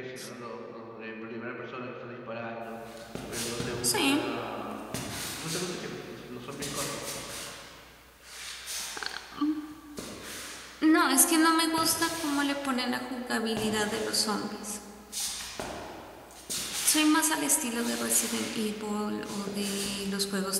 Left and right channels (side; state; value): both; identical; correlation 1.00